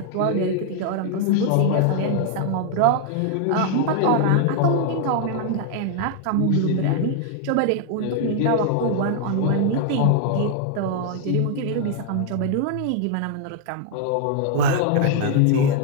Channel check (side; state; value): both; different; correlation 0.00